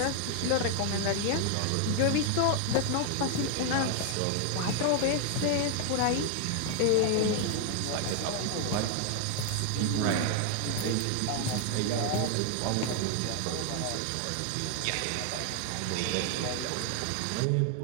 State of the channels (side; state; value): both; different; correlation 0.00